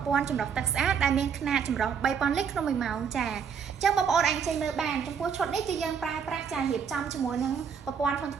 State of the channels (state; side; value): quieter; left; 6.9 dB